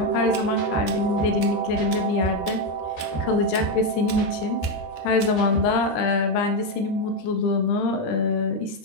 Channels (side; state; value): right; late; 13 ms